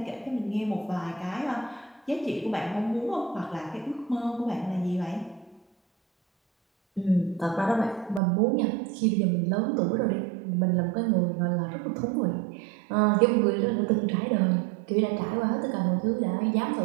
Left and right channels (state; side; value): drops out; left; at 8.2 s